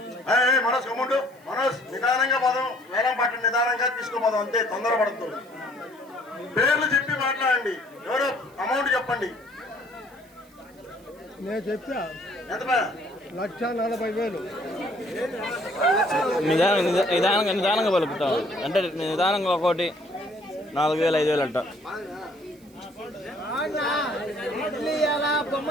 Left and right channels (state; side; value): noise; right; hiss, 29 dB below the sound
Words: మనోజ్ కమ్ముండు మనోజ్ నిదానంగా పోదాం వేలం పాట నిదానంగా తీసుకోపోదాం అంతే తొందరపడద్దు పేర్లు చెప్పి మాట్లాడండి ఎవరో అమౌంట్ చెప్పండి నేను చెప్తా ఎంత 1,40,000 నిదానంగా పలుకుతాం అంటే నిదానంగా ఒకటి 4,000 5,000 అంట బొమ్మ